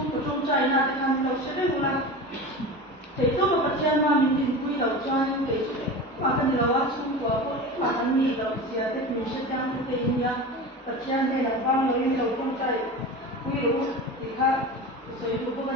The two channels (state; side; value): normal; both; correlation 0.30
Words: của trong trai na thì làm đầu sẽ đến một lần thì tôi mà bắt chân mà mình tìm quy đầu cho những cái mà cái điều đó xuống của tôi mà anh nghĩ đầu gì thì mình sẽ trang cái gì nhá bắt chân đây là bao nhiêu đầu trong trai quy đủ thì khác rồi tôi có